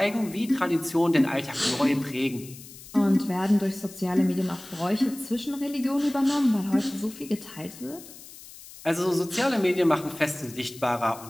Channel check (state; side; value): noise; left; hiss, 17 dB below the sound